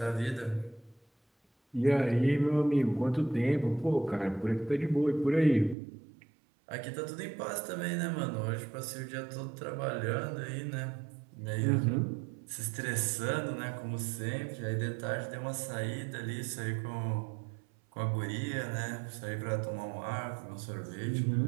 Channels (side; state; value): left; drops out; at 5.8 s